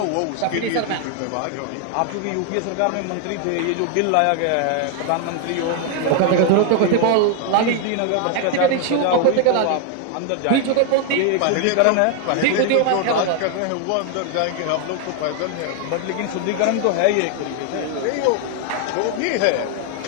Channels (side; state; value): both; different; correlation 0.01